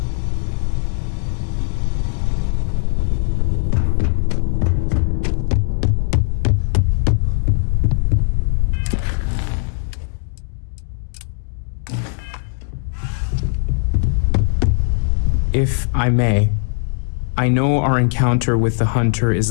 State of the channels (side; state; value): right; silent; digital silence